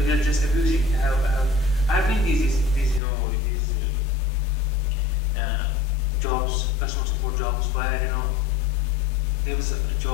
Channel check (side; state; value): right; drops out; at 3.0 s